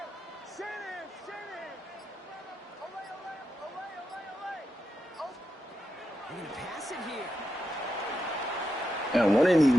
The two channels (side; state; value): both; normal; correlation 0.87